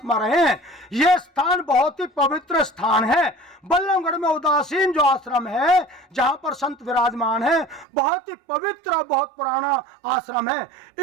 रहे हैं। ये स्थान बहुत ही पवित्र स्थान है। बल्लभगढ़ में उदासीन जो आश्रम है, जहाँ पर संत विराजमान है, बहुत ही पवित्र और बहुत पुराना आश्रम है।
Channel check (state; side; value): drops out; left; at 7.9 s